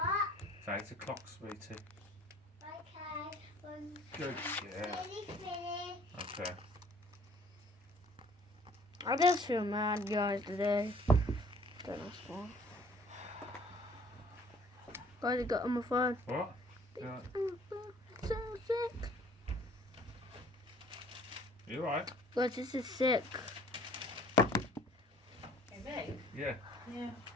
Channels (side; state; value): both; normal; correlation 0.55